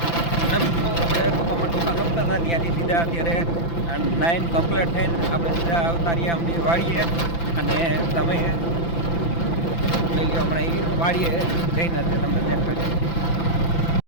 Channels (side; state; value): right; late; 5.9 ms